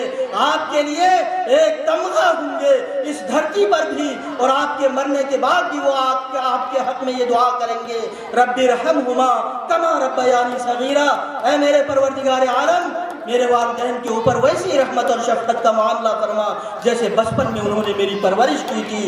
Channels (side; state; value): both; identical; correlation 1.00